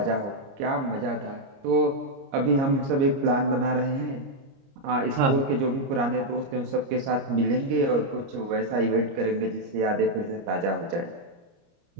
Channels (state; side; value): late; left; 29 ms